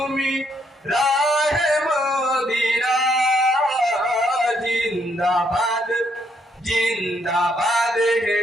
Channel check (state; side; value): normal; both; correlation 0.72